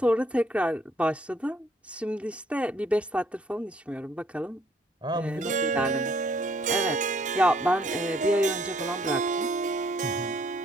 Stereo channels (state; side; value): normal; both; correlation 0.65